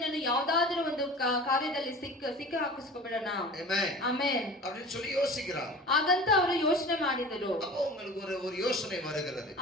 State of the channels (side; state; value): both; normal; correlation 0.38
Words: ಯಾವುದಾದರೂ ಒಂದು ಕಾರ್ಯದಲ್ಲಿ ಸಿಕ್ಕ ಹಾಕಿಸ್ಕೊಬಿಡೋಣ. ஆமென். ಆಮೆನ್. அப்படின்னு சொல்லி யோசிக்கிறாங்க. ಹಾಗಂತ ಅವರು ಯೋಚನೆ ಮಾಡಿದರು. அப்போ உங்களுக்கு ஒரு யோசனை வருகிறது.